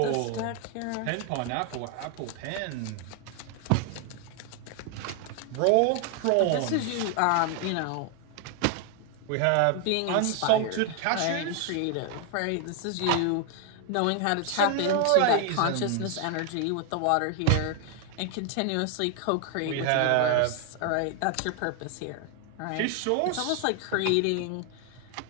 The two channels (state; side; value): different; both; correlation 0.00